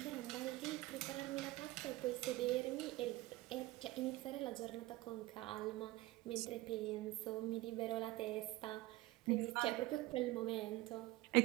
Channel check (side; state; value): left; quieter; 18.8 dB